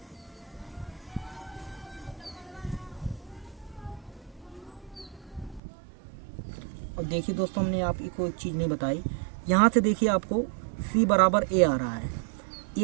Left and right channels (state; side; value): drops out; left; at 5.6 s